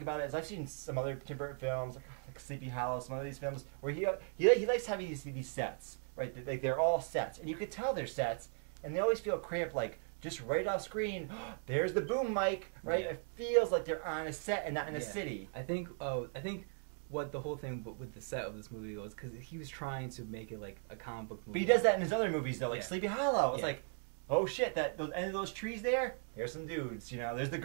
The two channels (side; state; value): left; silent; 52 dB below the other